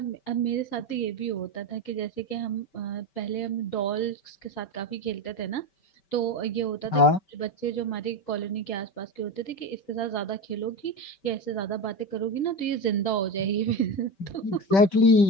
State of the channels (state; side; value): late; right; 5.3 ms